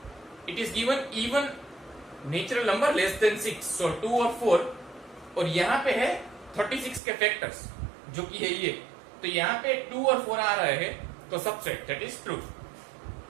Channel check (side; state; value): left; drops out; at 7.0 s